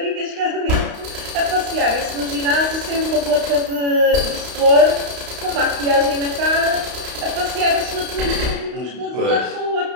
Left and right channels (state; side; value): late; left; 32 ms